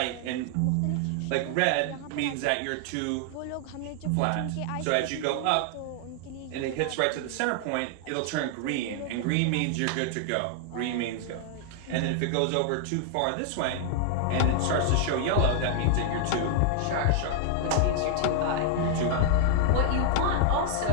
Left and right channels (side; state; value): both; different; correlation 0.00